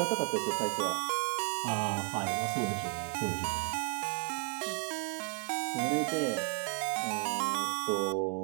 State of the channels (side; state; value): left; quieter; 38.6 dB